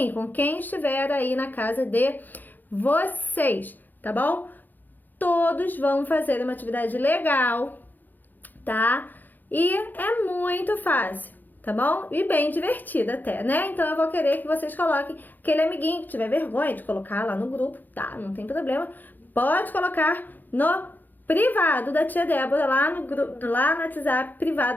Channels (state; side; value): late; right; 0.086 ms